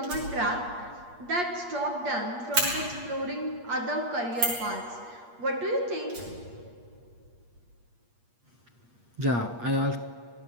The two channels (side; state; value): left; late; 8.5 ms